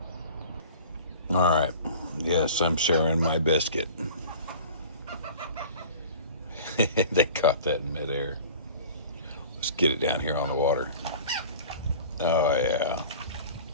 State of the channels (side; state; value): both; inverted; correlation -0.42